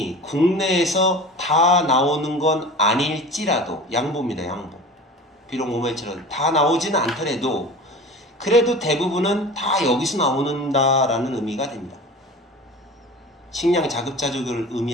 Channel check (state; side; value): normal; both; correlation 0.37